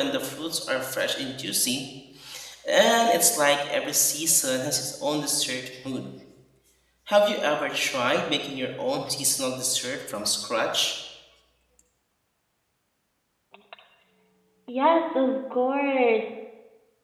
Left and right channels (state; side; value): identical; both; correlation 1.00